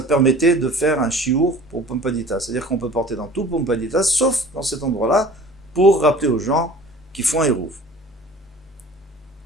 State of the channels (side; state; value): both; normal; correlation 0.45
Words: de faire un Shiur pour Pumpadita. C'est-à-dire qu'on peut porter dans tout Pumpadita, sauf dans cet endroit-là, pour rappeler aux gens qui font un hérouv.